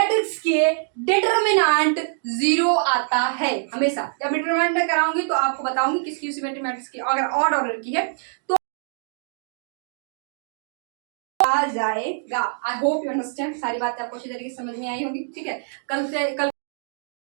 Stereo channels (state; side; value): silent; left; digital silence